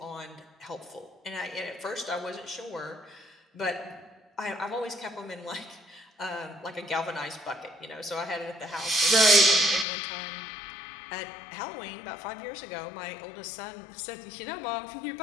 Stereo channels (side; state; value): right; drops out; at 9.9 s